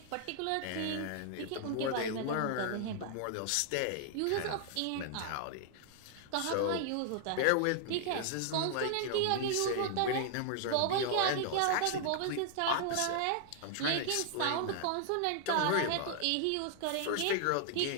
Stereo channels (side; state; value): both; different; correlation 0.00